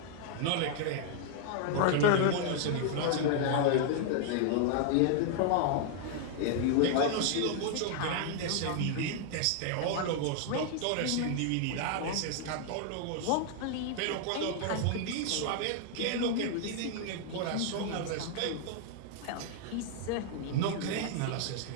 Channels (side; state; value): both; different; correlation 0.00